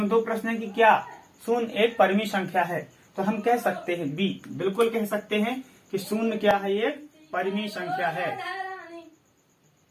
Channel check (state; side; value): identical; both; correlation 1.00